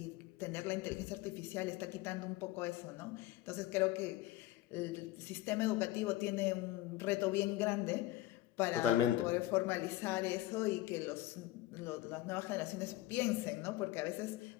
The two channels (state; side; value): quieter; right; 15.7 dB